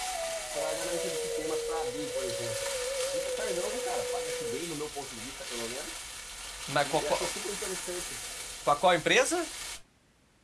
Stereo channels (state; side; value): identical; both; correlation 1.00